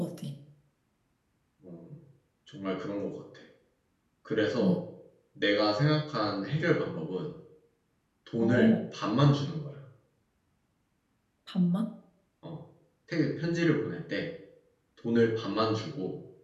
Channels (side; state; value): both; identical; correlation 1.00